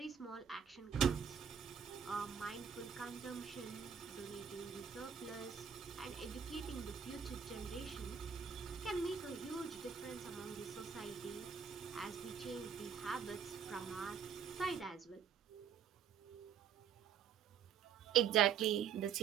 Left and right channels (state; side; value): quieter; left; 7.5 dB